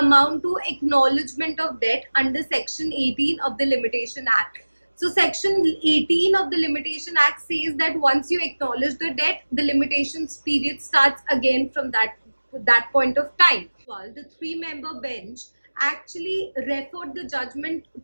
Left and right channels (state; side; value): inverted; both; correlation -1.00